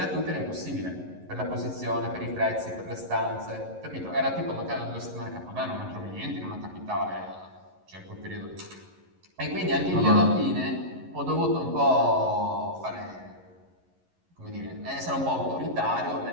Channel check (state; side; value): late; left; 11 ms